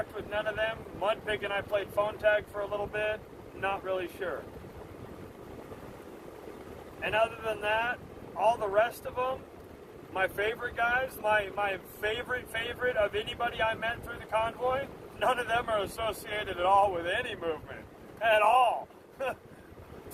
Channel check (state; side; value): identical; both; correlation 1.00